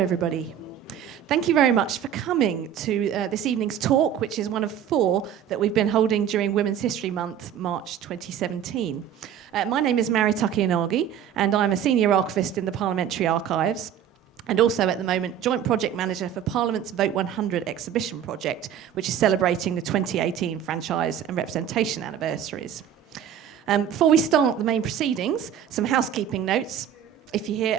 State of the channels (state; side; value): quieter; left; 9.5 dB